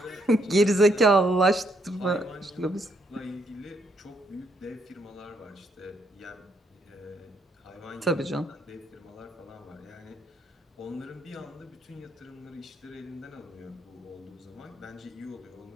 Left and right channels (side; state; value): both; normal; correlation 0.74